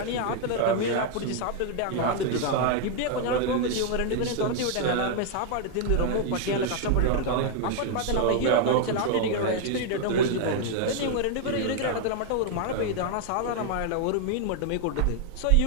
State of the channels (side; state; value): both; different; correlation 0.00